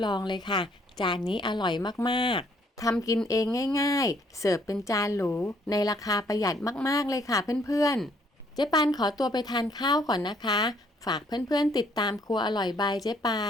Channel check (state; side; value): normal; both; correlation 0.66